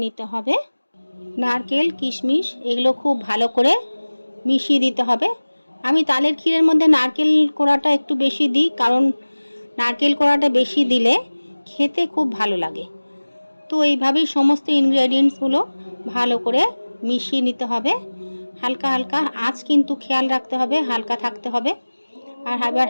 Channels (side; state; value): both; inverted; correlation -1.00